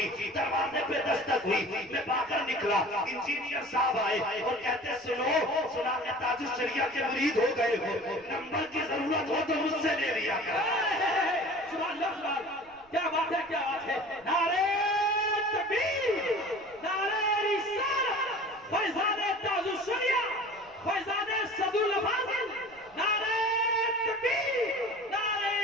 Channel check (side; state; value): right; noise; rumble, 30 dB below the sound